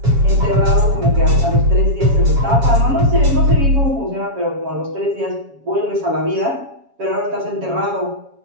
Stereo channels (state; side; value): late; left; 7.2 ms